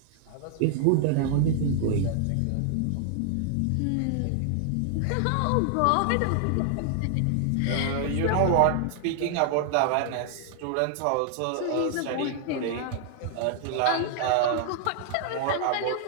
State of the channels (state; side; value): different; both; correlation 0.00